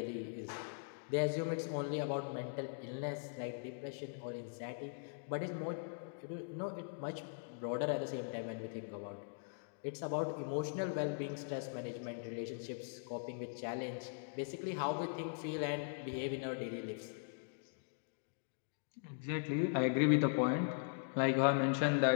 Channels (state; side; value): silent; right; digital silence